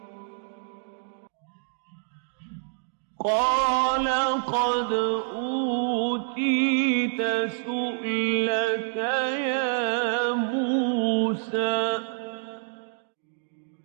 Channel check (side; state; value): left; silent; digital silence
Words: قال قد أوتيت سؤلك يا موسى